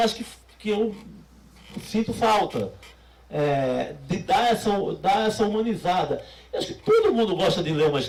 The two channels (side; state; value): both; identical; correlation 1.00